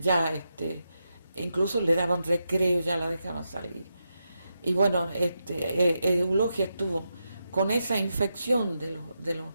incluso le daban recreo, ya la dejaban salir. Y bueno, Eulogia estuvo con esa infección de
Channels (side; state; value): both; inverted; correlation -0.87